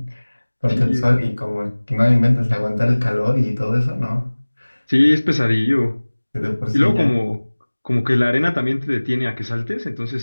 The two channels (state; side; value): inverted; both; correlation -1.00